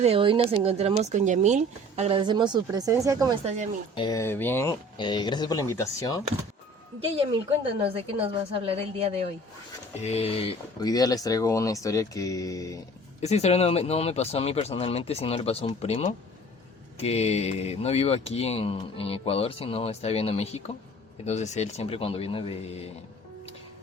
hoy nos encontramos con Yamil. Agradecemos su presencia. ¿Cómo estás, Yamil? Bien, gracias por la invitación. Ya, Yamil, cuéntanos de qué nos vas a hablar el día de hoy. Hoy día les traigo una historia que... Esta historia no me pasó a mí personalmente, sino le pasó a un primo que no vive aquí en Ecuador, sino está viviendo en México. Entonces él siempre cuando viene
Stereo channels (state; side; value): normal; both; correlation 0.48